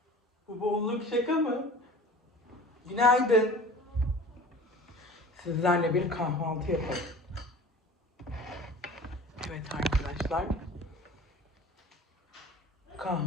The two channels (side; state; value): both; normal; correlation 0.42